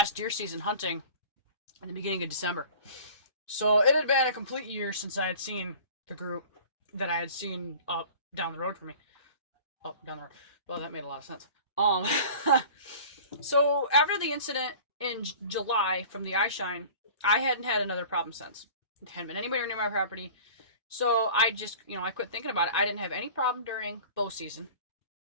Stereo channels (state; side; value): inverted; both; correlation -0.43